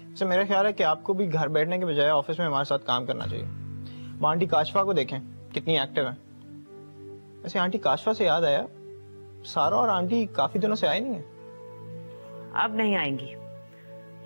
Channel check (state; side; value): inverted; both; correlation -1.00